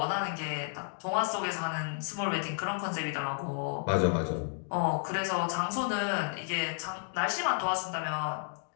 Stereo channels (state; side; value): silent; right; digital silence